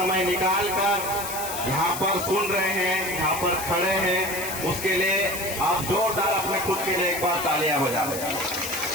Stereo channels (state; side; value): noise; left; hiss, 7 dB below the sound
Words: निकाल कर यहाँ पर सुन रहे हैं, यहाँ पर खड़े हैं, उसके लिए आप जोरदार अपने खुद के लिए एक बार तालियां बजा दें।